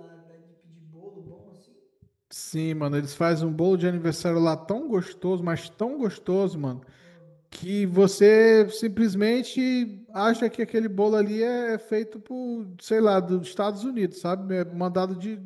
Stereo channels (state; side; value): identical; both; correlation 1.00